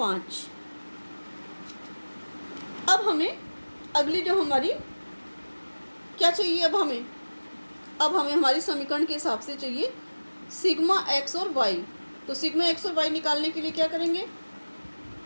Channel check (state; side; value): inverted; both; correlation -1.00